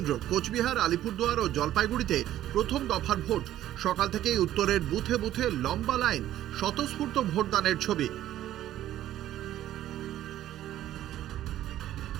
কোচবিহার, আলিপুরদুয়ার ও জলপাইগুড়িতে প্রথম দফার ভোট। সকাল থেকেই উত্তরের বুথে বুথে লম্বা লাইন, স্বতঃস্ফূর্ত ভোটদানের ছবি।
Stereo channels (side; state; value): left; quieter; 12.9 dB